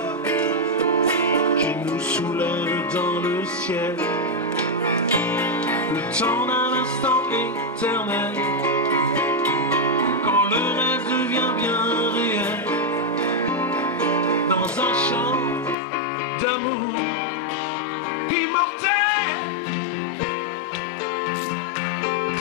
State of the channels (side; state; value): right; drops out; at 15.8 s